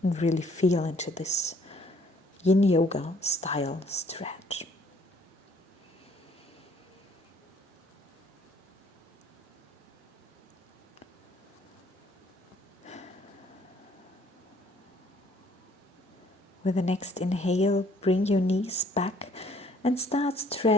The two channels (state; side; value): normal; both; correlation 0.61